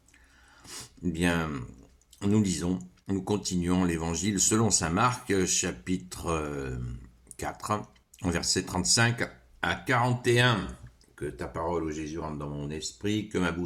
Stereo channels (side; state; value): both; identical; correlation 1.00